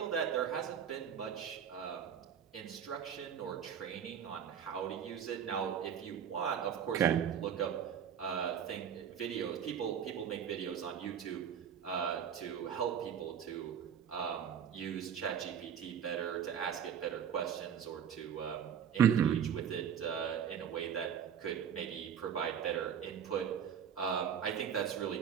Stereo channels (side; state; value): left; quieter; 8.2 dB